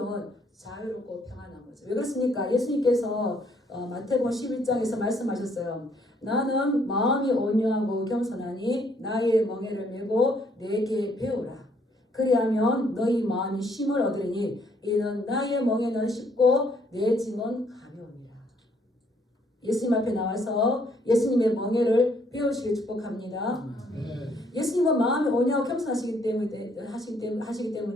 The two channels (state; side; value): normal; both; correlation 0.68